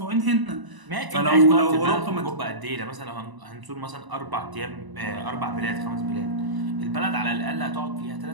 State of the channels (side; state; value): left; late; 1.0 ms